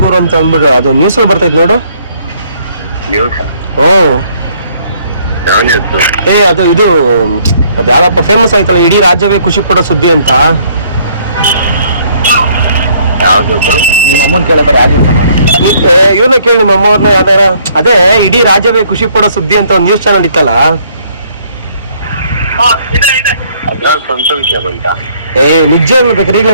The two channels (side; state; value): both; inverted; correlation -0.64